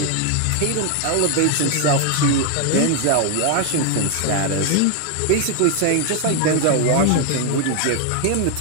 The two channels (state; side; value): different; both; correlation 0.01